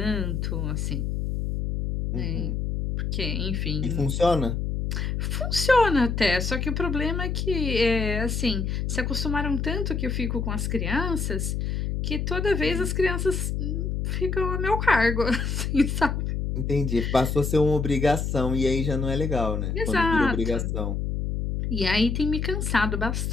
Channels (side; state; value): left; noise; hum, 1 dB below the sound